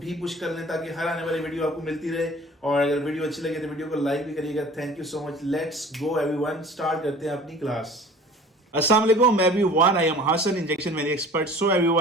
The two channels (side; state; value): both; normal; correlation 0.45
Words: भी पुश कर लें ताकि हर आने वाली वीडियो आपको मिलती रहे। और अगर वीडियो अच्छी लगे तो वीडियो को लाइक भी करिएगा। Thank you so much. Let's go everyone, start करते हैं अपनी क्लास। अस्सलाम वालेकुम everyone, I am Hasan injection मेरी एक्सपर्ट। सो